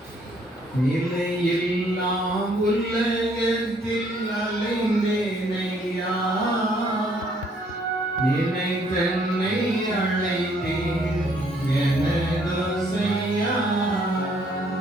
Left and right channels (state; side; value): normal; both; correlation 0.65